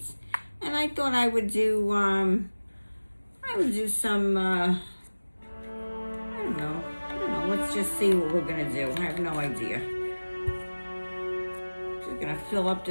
And I thought I would do some, I don't know, let's just see what we're gonna do. I have no idea. Just gonna fill up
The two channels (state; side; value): inverted; both; correlation -1.00